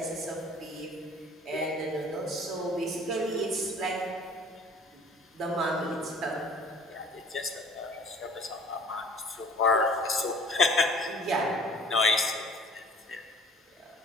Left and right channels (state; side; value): normal; both; correlation 0.50